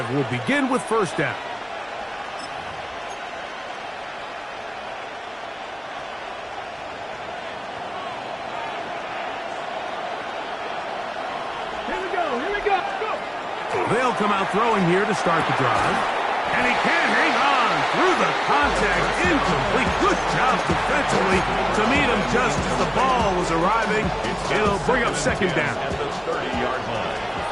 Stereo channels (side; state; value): both; identical; correlation 1.00